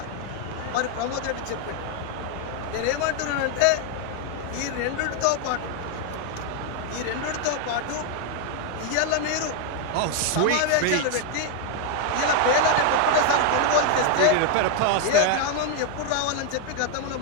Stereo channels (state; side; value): different; both; correlation 0.01